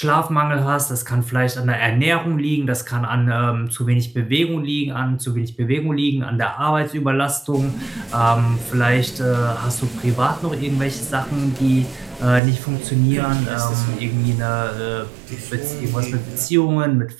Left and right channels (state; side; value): drops out; left; at 12.4 s